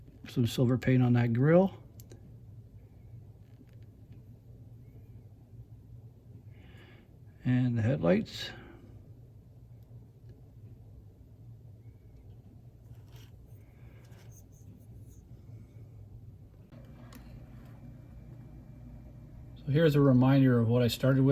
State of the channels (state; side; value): identical; both; correlation 1.00